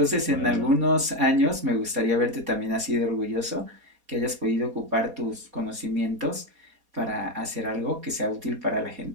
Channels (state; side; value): late; left; 4.2 ms